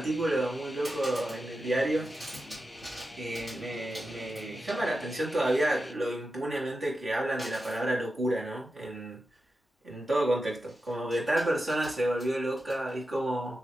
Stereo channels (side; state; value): both; normal; correlation 0.90